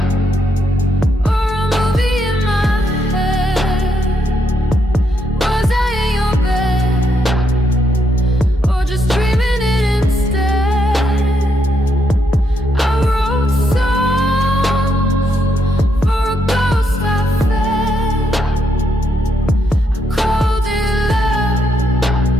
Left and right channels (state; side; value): normal; both; correlation 0.77